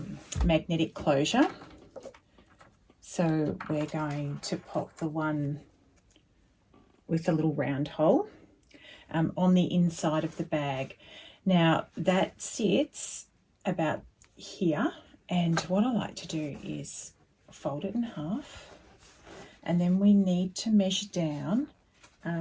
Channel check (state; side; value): identical; both; correlation 1.00